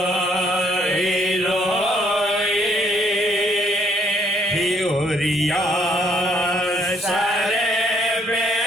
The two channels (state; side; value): normal; both; correlation 0.67